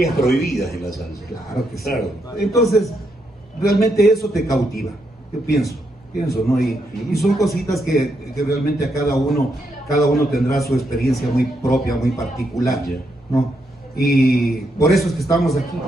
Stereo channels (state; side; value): normal; both; correlation 0.79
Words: prohibidas en la salsa. Claro que sí. Claro. Entonces, realmente eso te cautiva, yo pienso, ¿no? Y son cositas que realmente a cada uno tendrá su experiencia muy propia, muy particular, ¿no? Y por eso es que estamos aquí,